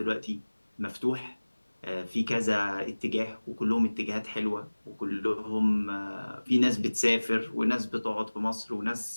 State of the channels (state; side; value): inverted; both; correlation -1.00